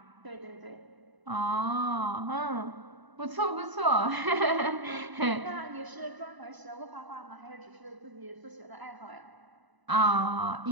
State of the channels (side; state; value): left; late; 1.0 ms